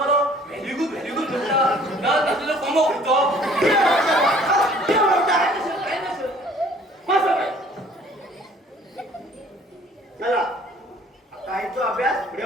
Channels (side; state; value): both; normal; correlation 0.54